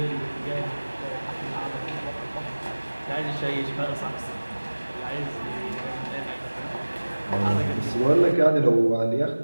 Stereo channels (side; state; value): both; inverted; correlation -1.00